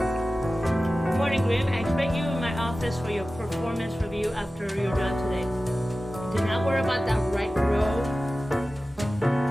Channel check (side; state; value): both; normal; correlation 0.95